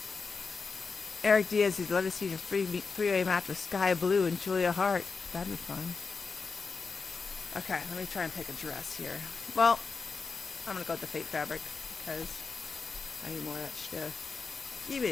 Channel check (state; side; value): quieter; right; 4.7 dB